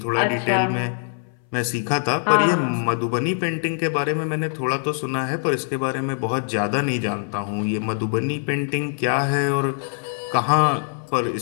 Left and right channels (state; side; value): silent; right; 60 dB below the other